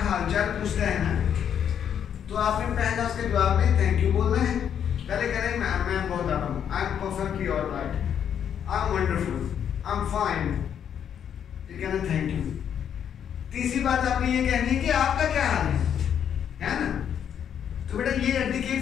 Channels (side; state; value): right; quieter; 8.7 dB